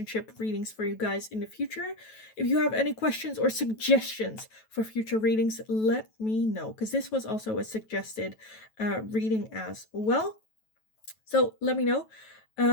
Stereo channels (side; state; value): right; late; 9.2 ms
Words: readings for you guys in the future. If you have any questions or suggestions for future readings, let me know, because this was also a suggested reading as well. So let me know.